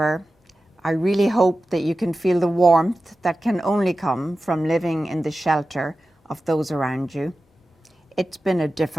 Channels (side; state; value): both; normal; correlation 0.94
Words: I really hope that you can feel the warmth that can only come from living in the shelter of those around you. It's been a